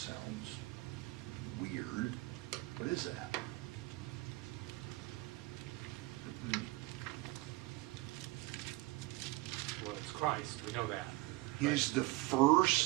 weird. What is that? Well, it's Christ, we know that. He's the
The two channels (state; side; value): quieter; left; 20.7 dB